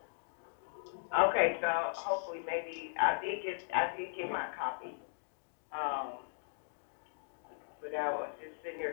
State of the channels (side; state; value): right; silent; digital silence